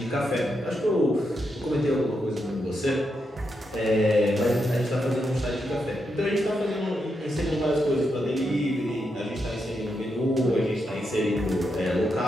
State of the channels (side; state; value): both; normal; correlation 0.83